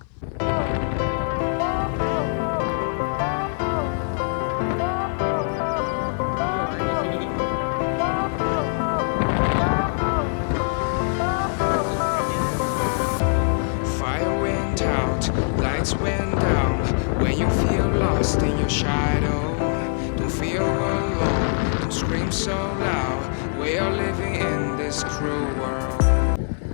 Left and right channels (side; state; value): right; silent; 56 dB below the other